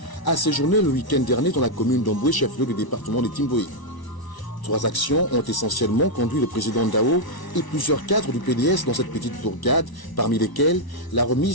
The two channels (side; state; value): right; late; 1.0 ms